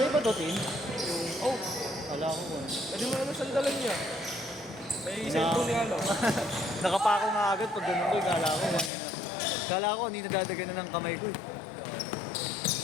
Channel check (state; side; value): drops out; right; at 8.9 s